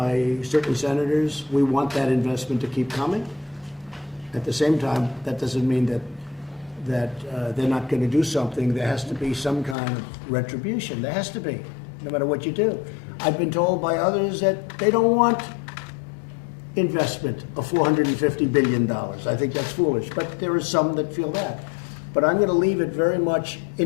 certain senators we want that investment to keep coming. At the same time, that doesn't mean that they're not going to do something. There has to be some kind of retribution. There has to be, no matter what you do. I've been told by others that they don't want investment of $450 billion. I think that's foolish, but there are some that feel that. But I'm going to leave it very much,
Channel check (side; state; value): right; drops out; at 9.8 s